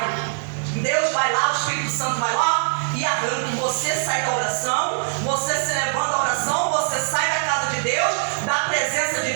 Deus vai lá, o Espírito Santo vai lá e arranca. Você sai da oração, você se levanta da oração, você sai da casa de Deus, da presença de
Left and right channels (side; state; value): left; silent; digital silence